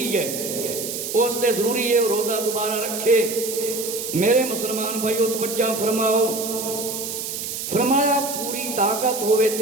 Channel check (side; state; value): right; noise; hiss, 5 dB below the sound